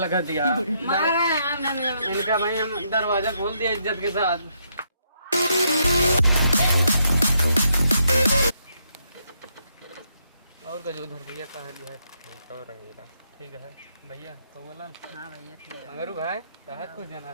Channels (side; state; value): both; inverted; correlation -0.76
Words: दिया इनका भाई हम दरवाजा खोल दिया इज्जत के साथ। और का जो उधर भैया कहाँ लिया है ठीक और रंगीला ठीक है भैया तो बोला हाँ भैया ठीक है मगर भाई कहा कुछ